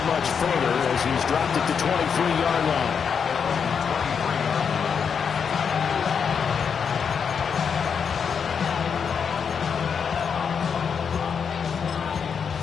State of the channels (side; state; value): right; quieter; 6.7 dB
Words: much further as he's dropped it to 23-yard line.